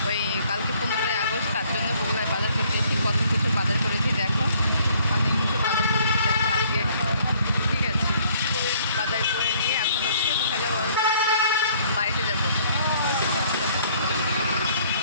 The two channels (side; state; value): both; inverted; correlation -0.61